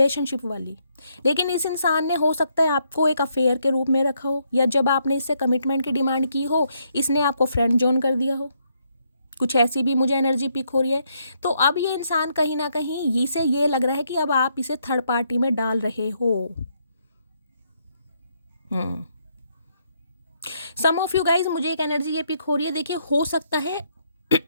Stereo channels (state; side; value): inverted; both; correlation -0.74